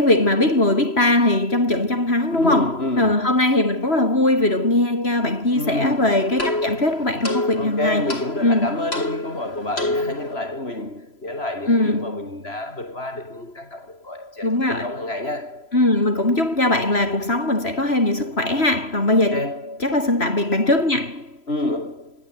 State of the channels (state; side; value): late; right; 3.0 ms